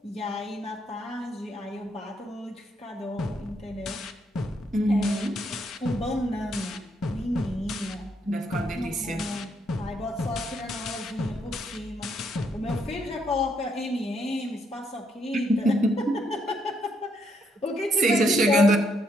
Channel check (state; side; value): normal; both; correlation 0.74